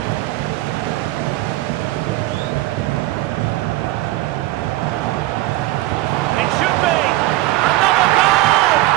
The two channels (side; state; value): left; quieter; 17.2 dB